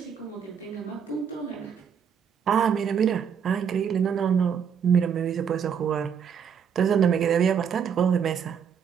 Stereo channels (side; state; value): left; quieter; 7.5 dB